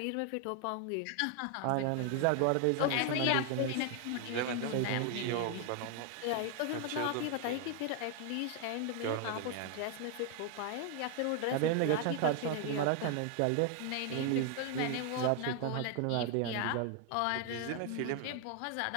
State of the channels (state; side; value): different; both; correlation 0.00